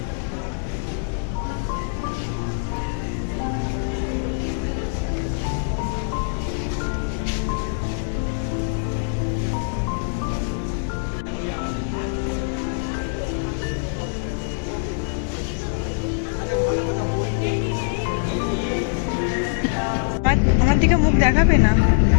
আমার দিকে মুখ দেখাবে না,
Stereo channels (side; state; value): right; silent; digital silence